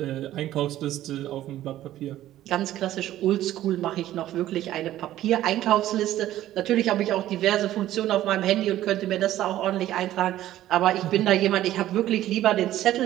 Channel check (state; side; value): quieter; left; 13.6 dB